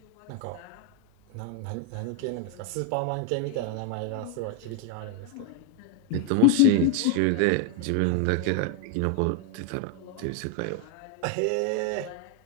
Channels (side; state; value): both; different; correlation 0.01